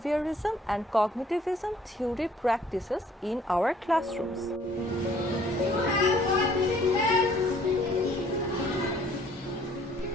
and cognitivism theory practices in our classrooms.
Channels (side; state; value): both; normal; correlation 0.60